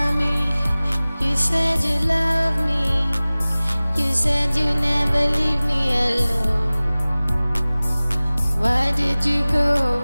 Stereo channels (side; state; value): both; inverted; correlation -0.99